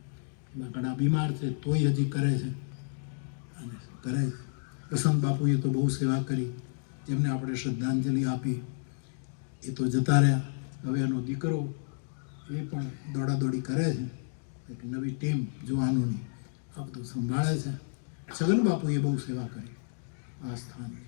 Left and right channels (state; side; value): silent; right; digital silence